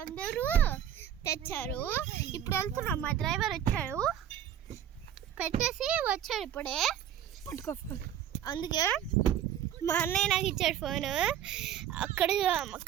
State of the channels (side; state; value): left; quieter; 10.1 dB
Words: అందరూ తెచ్చారు. ఇప్పుడు వెళ్తున్నాం, మా డ్రైవర్ వచ్చాడు, పెట్టేసి వచ్చాడు ఇప్పుడే. అందుకే మా అన్నయ్య నాకు ఇచ్చాడు ఫోను.